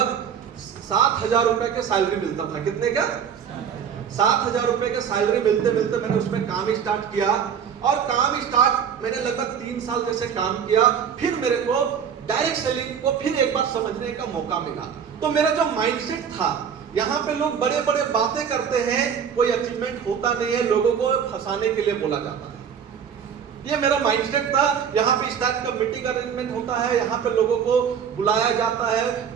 7,000 रुपए के सैलरी मिलता था। कितने का? 7,000 रुपए के सैलरी मिलते मिलते मैंने उसमें काम स्टार्ट किया, और मैंने लगभग 3 साल जैसे काम किया। फिर मेरे को डायरेक्ट सेलिंग को फिर एक बार समझने का मौका मिला। तो मेरा जो माइंडसेट था, यहाँ पे लोग बड़े बड़े बातें करते हैं, कोई अचीवमेंट होता नहीं है, लोगों को फंसाने के लिए बोला जाता है। ये मेरा माइंडसेट था। यहाँ पे इस टाइप का मीटिंग अरेंजमेंट होता है, यहाँ पे लोगों को बुलाया जाता है,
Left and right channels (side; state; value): left; quieter; 7.6 dB